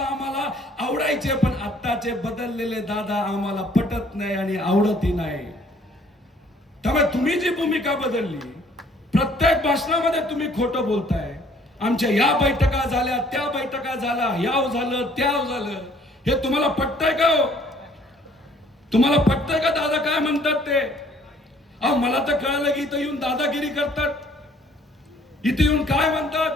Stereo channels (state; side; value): normal; both; correlation 0.59